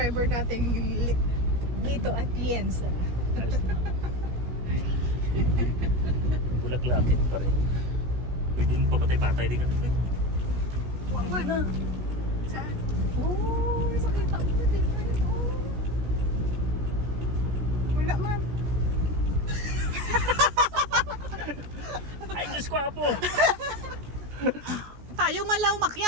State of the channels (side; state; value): left; late; 16 ms